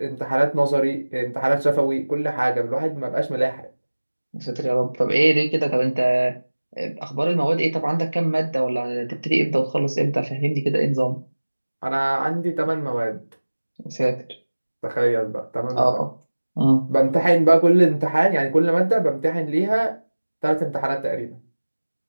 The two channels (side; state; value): both; inverted; correlation -1.00